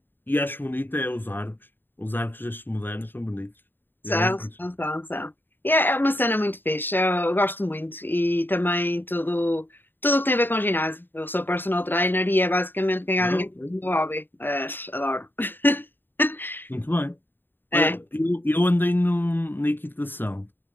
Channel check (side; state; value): right; late; 0.095 ms